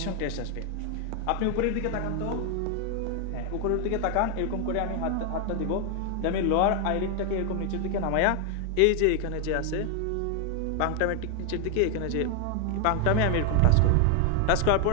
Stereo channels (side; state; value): both; different; correlation 0.01